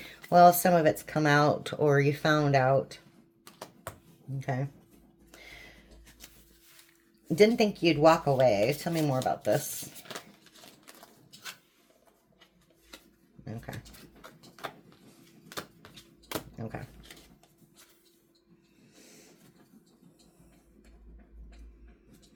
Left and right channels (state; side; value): identical; both; correlation 1.00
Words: Well, some of it's come out or you found out. Okay. Didn't think you'd walk away. Tell me more about this. Okay. Okay.